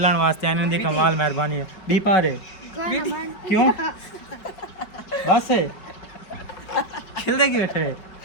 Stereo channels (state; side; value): late; right; 5.1 ms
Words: वास्ते आने दी कमाल मेहरबानी है भी पारे क्यों बस खिलदे की बैठे